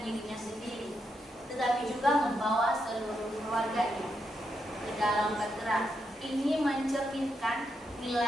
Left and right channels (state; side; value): normal; both; correlation 0.82